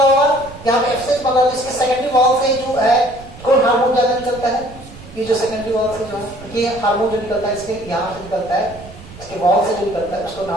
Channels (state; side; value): noise; right; rumble, 18 dB below the sound